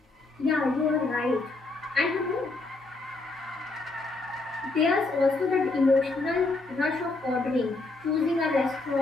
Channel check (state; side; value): quieter; right; 3.3 dB